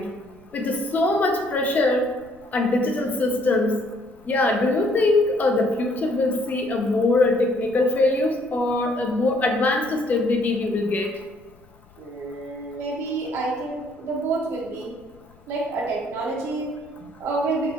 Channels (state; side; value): noise; left; rumble, 28 dB below the sound